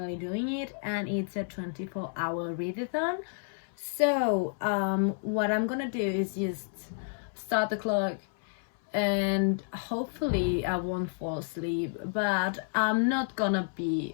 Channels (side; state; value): right; silent; 58 dB below the other